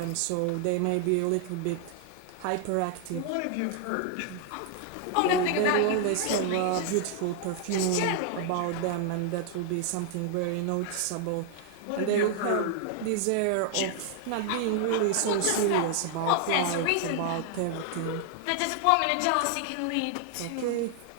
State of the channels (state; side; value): different; both; correlation 0.00